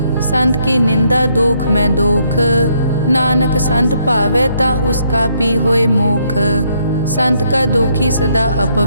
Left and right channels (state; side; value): inverted; both; correlation -0.72